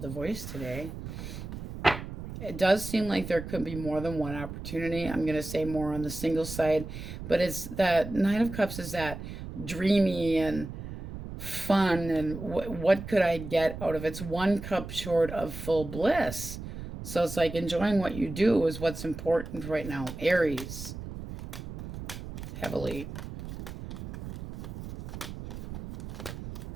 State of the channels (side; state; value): right; noise; rumble, 9 dB below the sound